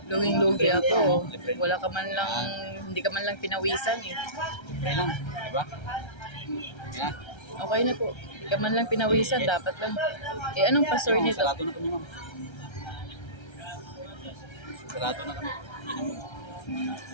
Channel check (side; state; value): right; late; 1.3 ms